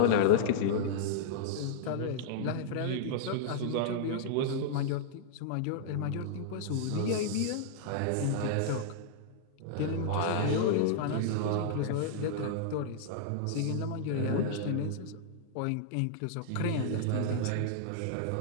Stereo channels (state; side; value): different; both; correlation -0.02